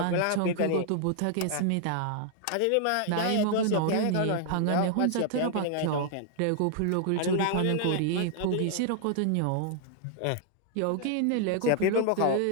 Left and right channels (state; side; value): different; both; correlation 0.00